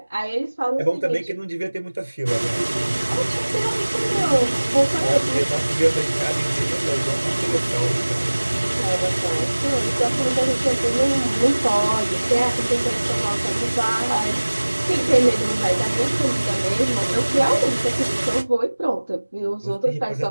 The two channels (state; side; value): inverted; both; correlation -1.00